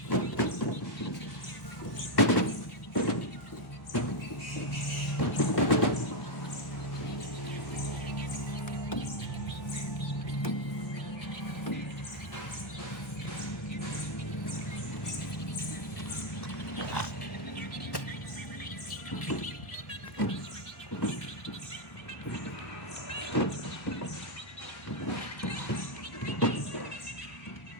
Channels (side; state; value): right; late; 1.0 ms